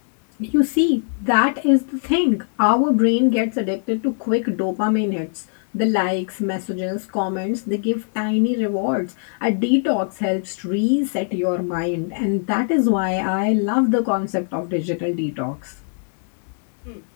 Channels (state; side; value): silent; right; 62 dB below the other